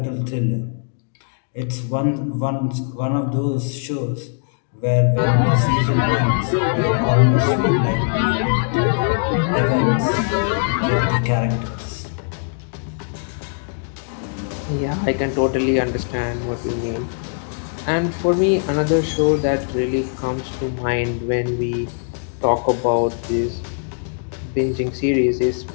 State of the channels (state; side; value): silent; right; 61 dB below the other